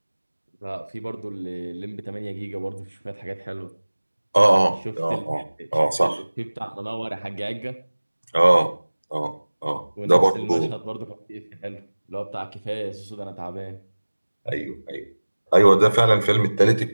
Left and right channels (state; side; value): inverted; both; correlation -1.00